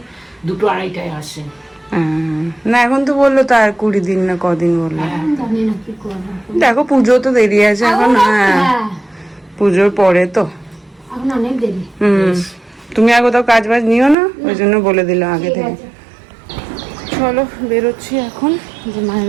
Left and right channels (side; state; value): left; drops out; at 14.2 s